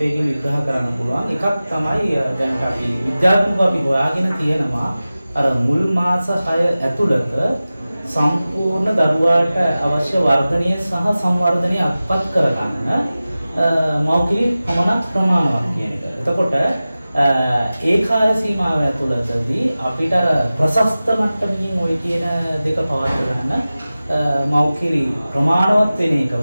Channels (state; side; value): inverted; both; correlation -0.96